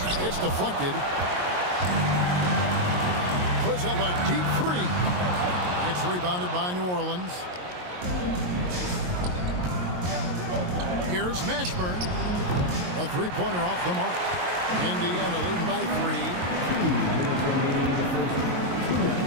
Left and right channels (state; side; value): late; left; 22 ms